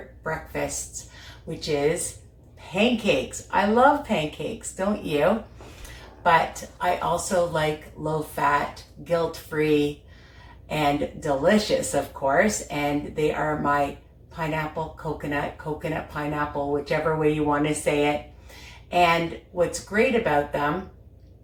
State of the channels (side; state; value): both; identical; correlation 1.00